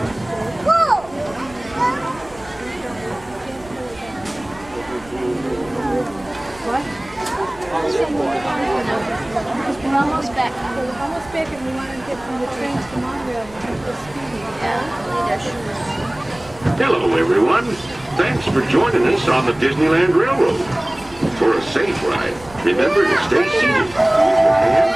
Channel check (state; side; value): noise; right; rumble, 21 dB below the sound